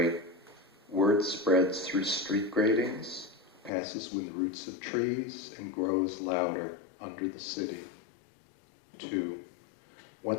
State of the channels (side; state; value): right; drops out; at 3.7 s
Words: Word spreads through street gratings, passes with roots of trees, and grows louder under the city. 2,